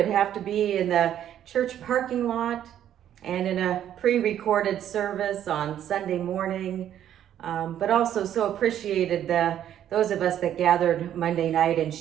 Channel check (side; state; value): left; quieter; 10.7 dB